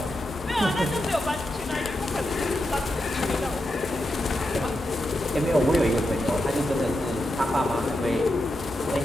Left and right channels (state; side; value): normal; both; correlation 0.87